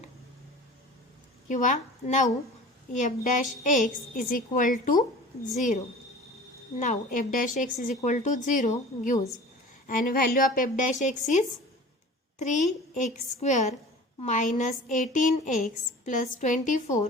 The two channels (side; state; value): both; normal; correlation 0.41